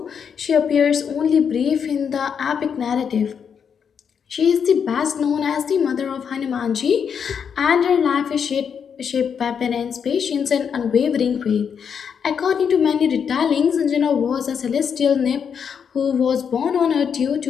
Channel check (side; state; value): right; quieter; 7.1 dB